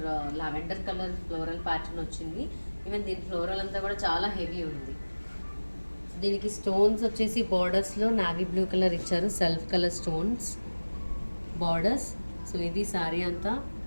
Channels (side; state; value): both; inverted; correlation -1.00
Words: lavender colour floral pattern వచ్చింది. ఈవెన్ దీని ఫ్లోరల్ అంతా కూడా చాలా హెవీ ఉంది. దీనికి స్టోన్స్ వచ్చేసి బార్డర్స్లో నావీ బ్లూ కలర్ ఇచ్చారు, self colour stones borders. So ఇది శారీ అంతా